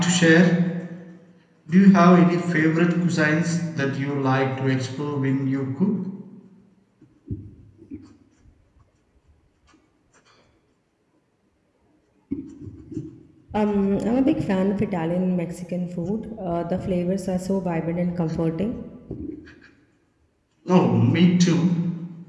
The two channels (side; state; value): both; identical; correlation 1.00